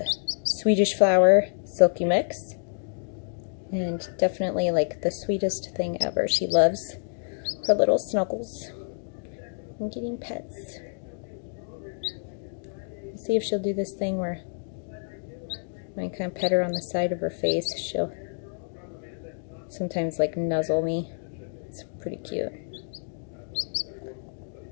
Swedish flower silky mix, and definitely like the sweetest thing ever. She loves her little snuggles and getting pets. Let's see if she'll do this thing where when I kind of pet her on the side of her face, she'll sometimes like nuzzle me. It's pretty cute.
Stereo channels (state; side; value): silent; right; digital silence